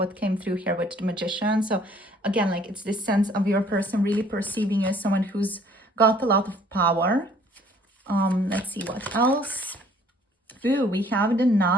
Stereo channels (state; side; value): normal; both; correlation 0.58